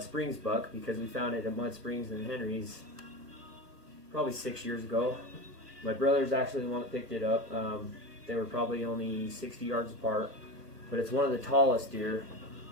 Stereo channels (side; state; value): left; late; 1.8 ms